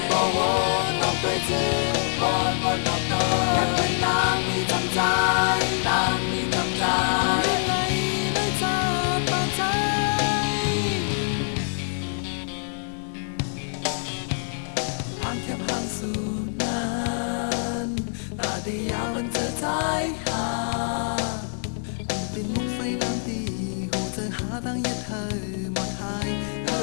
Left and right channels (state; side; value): silent; right; 56 dB below the other